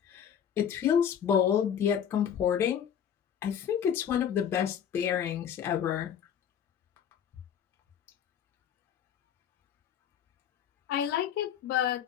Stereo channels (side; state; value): right; quieter; 8.8 dB